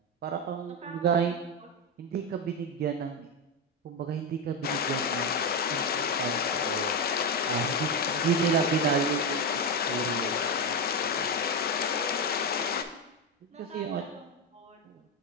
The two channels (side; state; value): both; normal; correlation 0.10